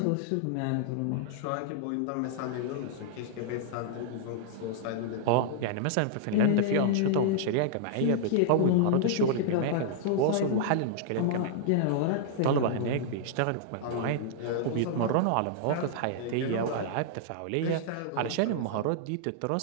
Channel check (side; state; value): both; different; correlation -0.01